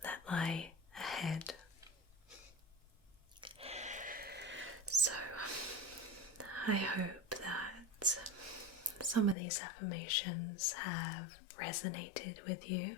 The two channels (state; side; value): drops out; right; at 9.3 s